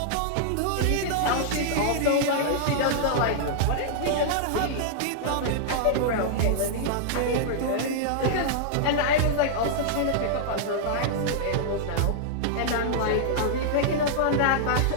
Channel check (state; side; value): different; both; correlation -0.01